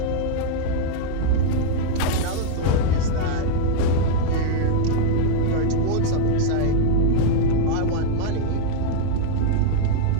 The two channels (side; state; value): both; different; correlation -0.01